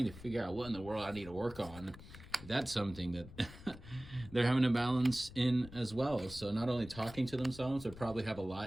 to figure out what in the world I need to work on, that's something that they're having a balance in as well. So not only talking to themselves, they probably have a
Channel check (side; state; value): left; noise; rumble, 16 dB below the sound